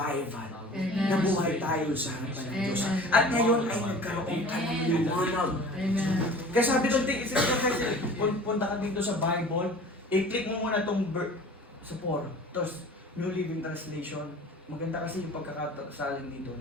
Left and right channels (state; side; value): normal; both; correlation 0.43